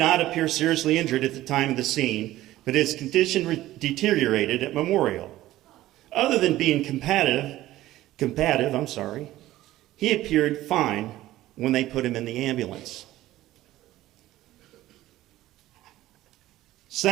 appear seriously injured at the time of the scene, but his condition deteriorated at Memorial. Other than being combative, he appeared fine when they put him in the ambulance.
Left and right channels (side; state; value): left; quieter; 15.3 dB